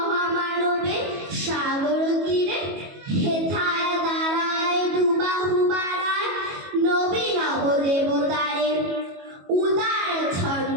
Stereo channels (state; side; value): late; left; 22 ms